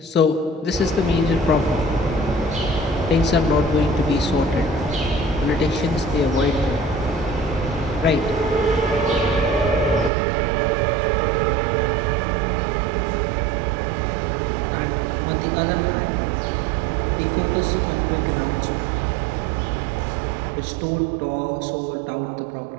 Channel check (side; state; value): left; drops out; at 10.1 s